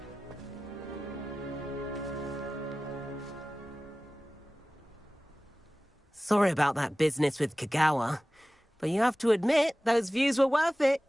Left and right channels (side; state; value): both; normal; correlation 0.96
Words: Sorry about that business with Kagawa, but you have to admit, those views were worth it.